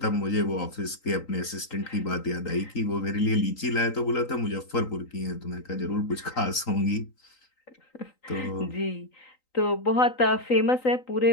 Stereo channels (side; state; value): right; late; 3.9 ms